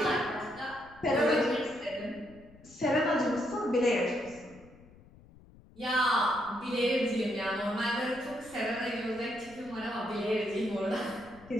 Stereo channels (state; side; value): noise; left; rumble, 23 dB below the sound